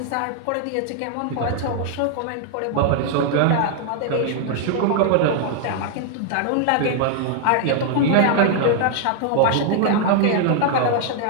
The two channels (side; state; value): both; different; correlation 0.00